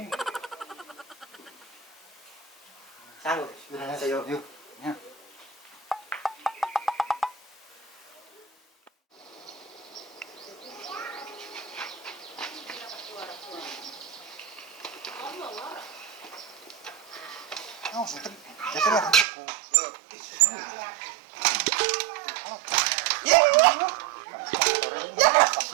Sanggup. Ayo. Yuk. Ya. Oh, sudah. Jadi lah aku.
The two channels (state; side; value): drops out; left; at 19.2 s